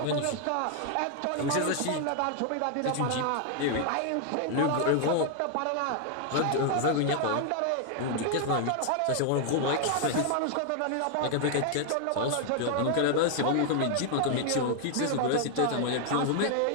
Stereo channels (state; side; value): different; both; correlation 0.00